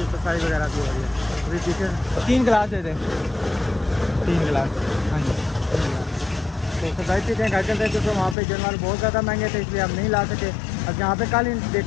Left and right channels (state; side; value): drops out; right; at 8.3 s